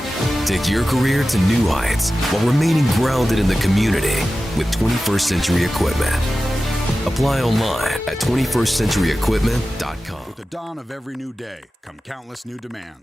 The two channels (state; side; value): normal; both; correlation 0.94